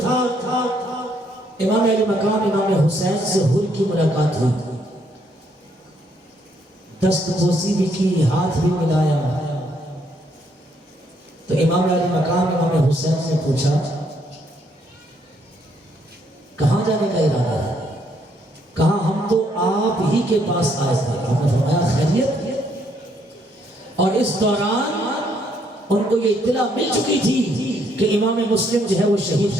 امام علی مقام امام حسین سے حر کی ملاقات ہوئی، دست بوسی بھی کی، ہاتھ بھی ملایا، تو امام علی مقام امام حسین نے پوچھا کہاں جانے کا ارادہ ہے؟ کہا ہم تو آپ ہی کے پاس آئے تھے۔ آپ نے فرمایا خیریت؟ اور اس دوران ان کو یہ اطلاع مل چکی تھی کہ امام مسلم جو ہے وہ شہید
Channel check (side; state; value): both; normal; correlation 0.71